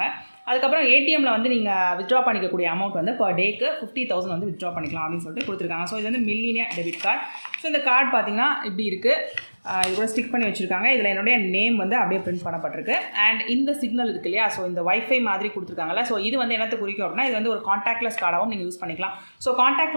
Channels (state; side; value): inverted; both; correlation -1.00